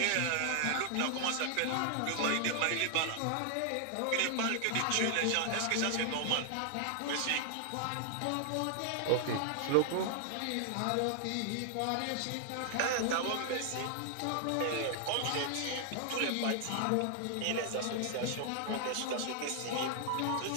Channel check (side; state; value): both; different; correlation 0.00